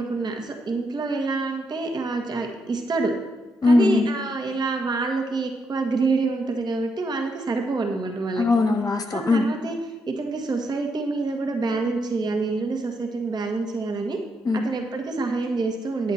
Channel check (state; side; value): normal; both; correlation 0.79